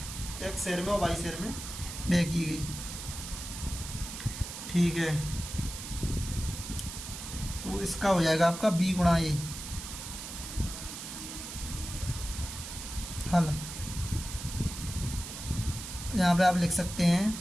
1 शहर में और 22 शहर में व्यय की गई, ठीक है। तो इसका हो जाएगा आपका B गुणा A। हल यहाँ पे आप लिख सकते हैं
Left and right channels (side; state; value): right; noise; hiss, 9 dB below the sound